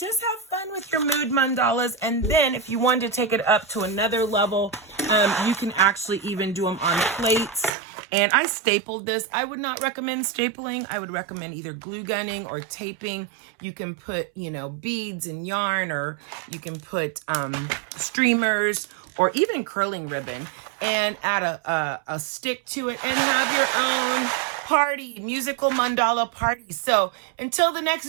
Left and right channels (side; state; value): left; drops out; at 7.8 s